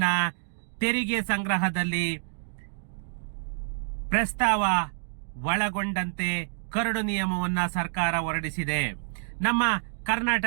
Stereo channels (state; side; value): silent; left; digital silence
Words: ತೆರಿಗೆ ಸಂಗ್ರಹದಲ್ಲಿ ಪ್ರಸ್ತಾವ ಒಳಗೊಂಡಂತೆ ಕರಡು ನಿಯಮವನ್ನ ಸರ್ಕಾರ ಹೊರಡಿಸಿದೆ. ನಮ್ಮ